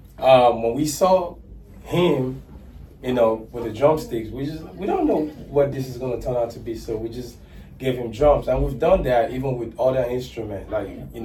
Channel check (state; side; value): identical; both; correlation 1.00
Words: when we saw him, with the drumsticks, we don't know what this is going to turn out to be, so we just gave him drums, and we've done that even with other instruments, like he